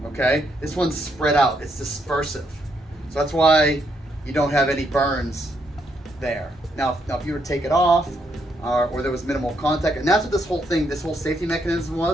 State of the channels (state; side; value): normal; both; correlation 0.76